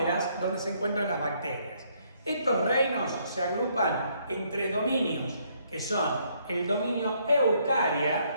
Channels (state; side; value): inverted; both; correlation -0.69